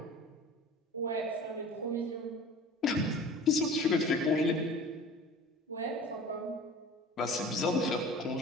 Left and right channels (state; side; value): normal; both; correlation 0.41